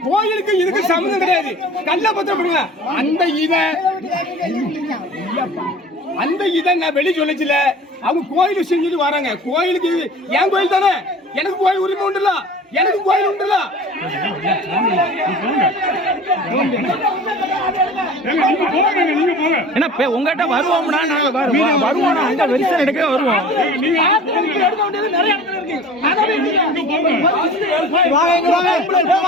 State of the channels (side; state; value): both; normal; correlation 0.42